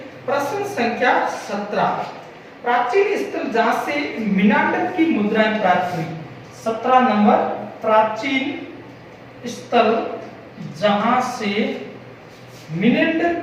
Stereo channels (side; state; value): both; identical; correlation 1.00